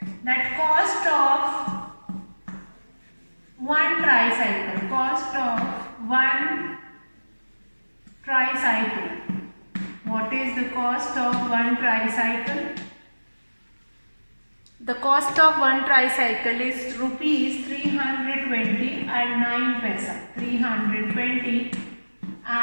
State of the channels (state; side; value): inverted; both; correlation -1.00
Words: That cost of one tricycle. Cost of one tricycle. What is the cost of one tricycle? The cost of one tricycle is rupees 320 and 9 paisa. 320